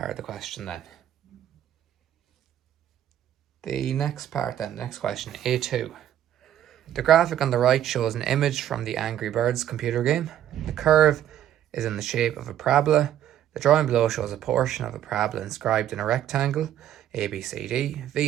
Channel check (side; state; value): left; quieter; 11.3 dB